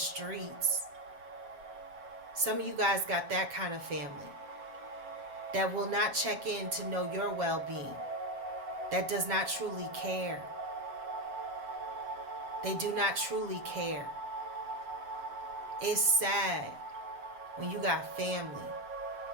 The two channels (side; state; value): left; late; 7.3 ms